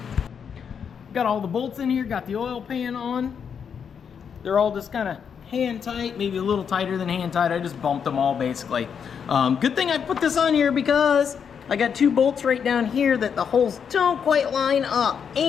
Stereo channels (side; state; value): right; quieter; 7.1 dB